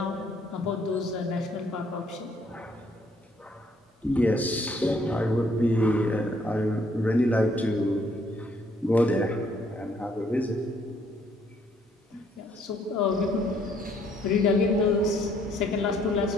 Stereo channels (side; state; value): both; normal; correlation 0.66